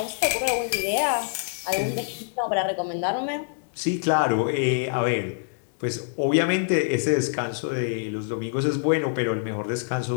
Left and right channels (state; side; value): silent; right; digital silence